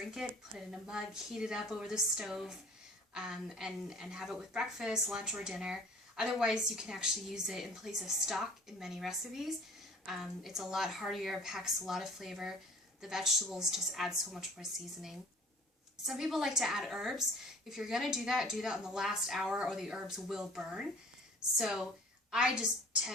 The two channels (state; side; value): normal; both; correlation 0.48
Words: it, put it in a mug, heat it up over the stove, and have it with breakfast, lunch, or dinner. Otherwise, you can actually use it in place of stock in many recipes. It's a lot heartier, packs a lot of flavor. The vegetables just add so much more seasoning. Some people like to add herbs. If you're going to do that in the last hour or the herbs will burn. So I just